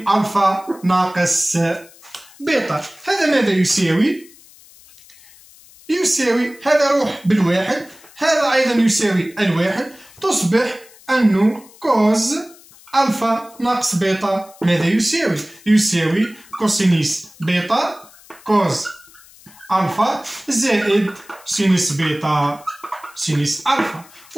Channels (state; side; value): noise; left; hiss, 24 dB below the sound